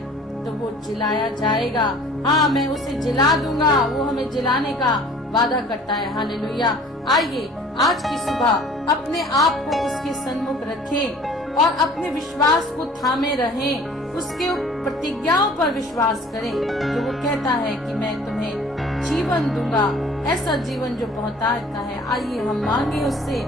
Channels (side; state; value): both; normal; correlation 0.50